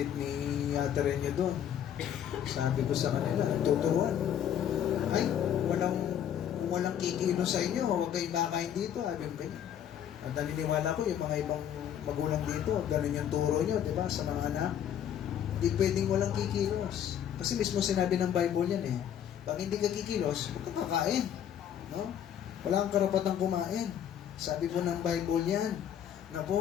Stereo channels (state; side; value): quieter; right; 9.7 dB